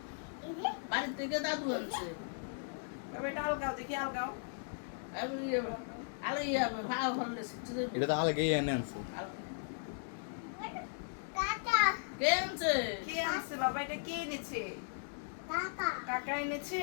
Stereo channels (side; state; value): right; silent; digital silence